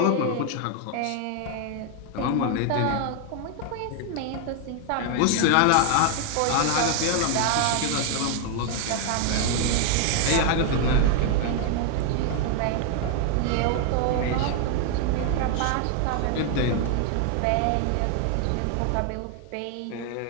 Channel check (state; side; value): different; both; correlation 0.00